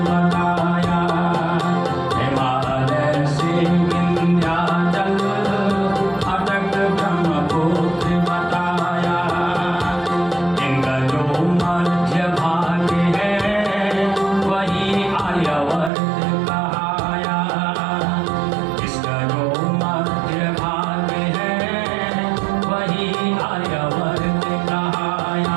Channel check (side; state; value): left; drops out; at 15.9 s